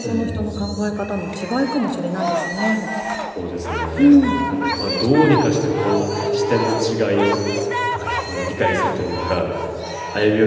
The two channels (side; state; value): both; identical; correlation 1.00